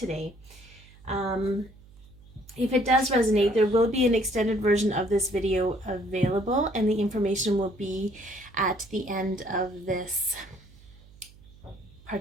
If it does resonate, there will be an extended version of this video available, and the information will be at the end of this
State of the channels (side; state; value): right; noise; hum, 24 dB below the sound